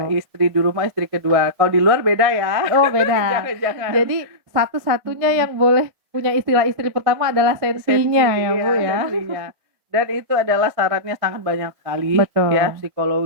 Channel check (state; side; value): late; left; 1.6 ms